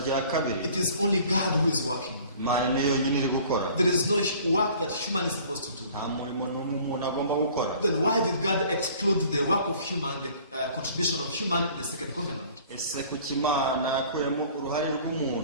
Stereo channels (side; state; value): both; inverted; correlation -0.50